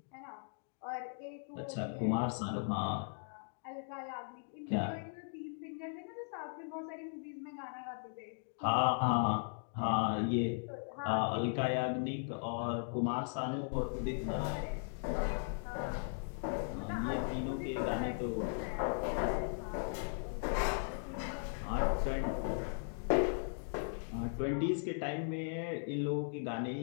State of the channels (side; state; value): right; silent; digital silence